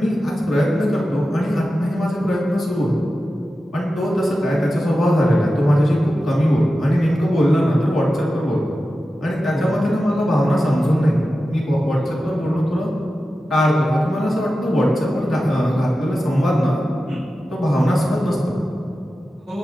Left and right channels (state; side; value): normal; both; correlation 0.93